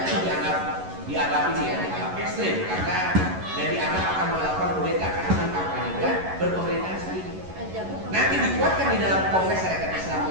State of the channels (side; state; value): left; late; 11 ms